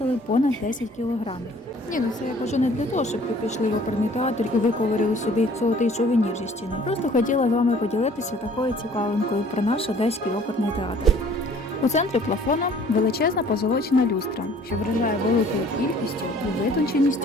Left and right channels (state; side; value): normal; both; correlation 0.54